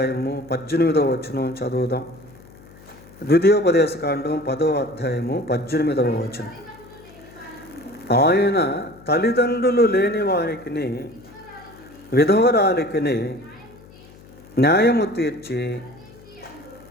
18వ వచనం చదువుదాం. ద్వితీయోపదేశకాండం 10వ అధ్యాయము 18వ వచనం. ఆయన తల్లిదండ్రులు లేని వారికి, విధవరాలికి న్యాయము తీర్చి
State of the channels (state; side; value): noise; left; hum, 22 dB below the sound